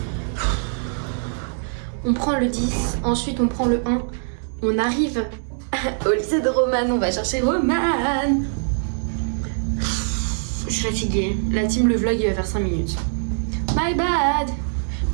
On prend le 10, ensuite on prend le 1. On arrive au lycée de Romane, on va chercher Romane. Je suis fatiguée. La team, le vlog, il va faire 5 minutes. My bad.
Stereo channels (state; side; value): silent; left; digital silence